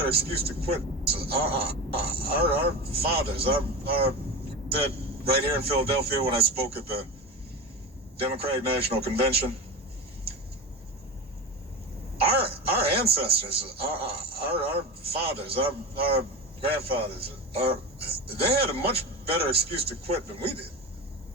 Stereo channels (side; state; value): both; normal; correlation 0.24